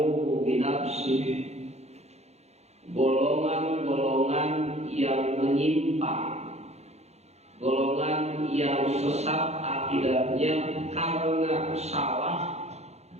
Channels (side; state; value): left; late; 0.31 ms